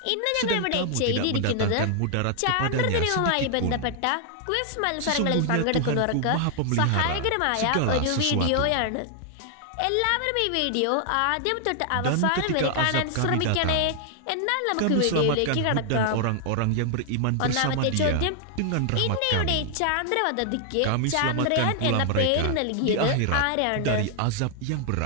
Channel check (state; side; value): different; both; correlation 0.00